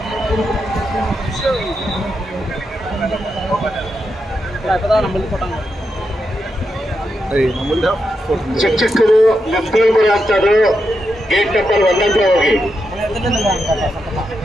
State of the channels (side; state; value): both; normal; correlation 0.85